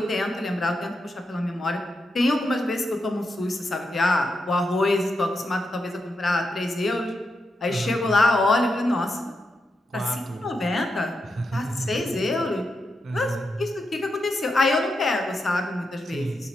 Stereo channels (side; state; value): both; normal; correlation 0.85